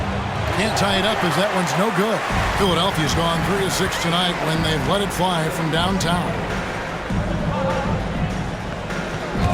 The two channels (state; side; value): identical; both; correlation 1.00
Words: Can't tie it up as that one's no good. Philadelphia's gone 3 of 6 tonight when they've let it fly from downtown.